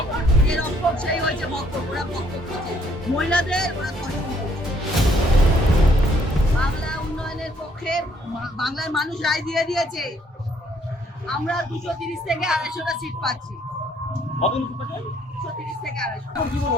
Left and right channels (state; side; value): normal; both; correlation 0.66